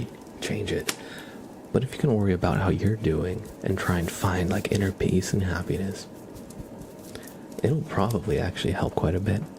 change it. But if you can worry about how you're doing and try and find like inner peace and happiness, it'll probably actually help quite a bit.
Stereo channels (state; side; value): identical; both; correlation 1.00